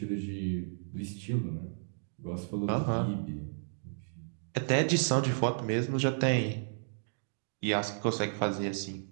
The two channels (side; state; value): left; silent; digital silence